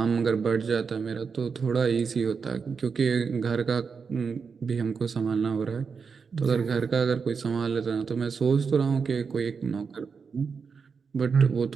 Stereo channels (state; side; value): quieter; left; 5.6 dB